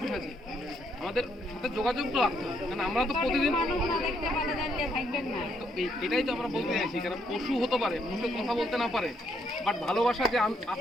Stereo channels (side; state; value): both; normal; correlation 0.73